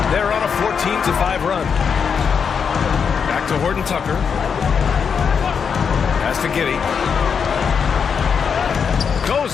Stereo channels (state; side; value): quieter; right; 6.5 dB